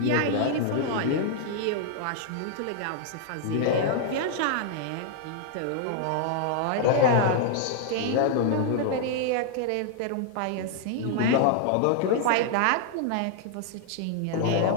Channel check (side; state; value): both; different; correlation -0.01